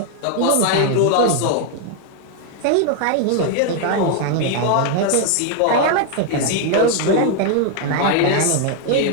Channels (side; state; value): both; different; correlation 0.00